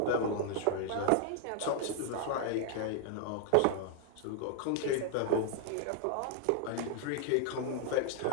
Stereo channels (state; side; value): different; both; correlation 0.00